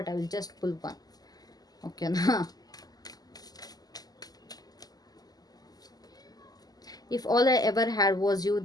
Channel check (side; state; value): right; late; 0.18 ms